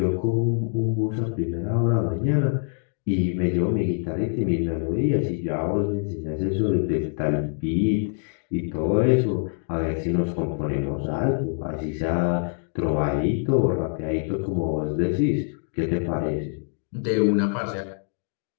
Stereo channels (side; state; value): right; silent; 59 dB below the other